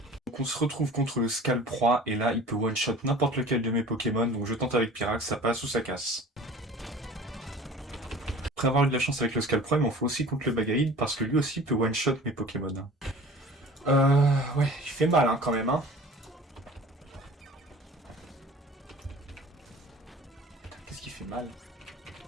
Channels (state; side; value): normal; both; correlation 0.44